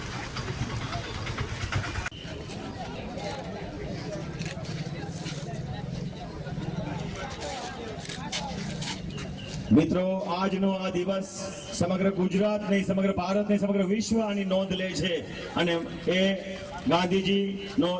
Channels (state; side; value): identical; both; correlation 1.00